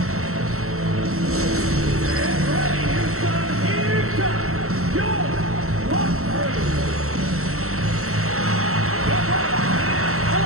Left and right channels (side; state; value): left; late; 0.63 ms